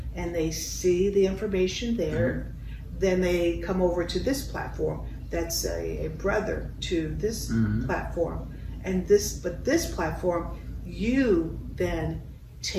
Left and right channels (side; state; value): both; identical; correlation 1.00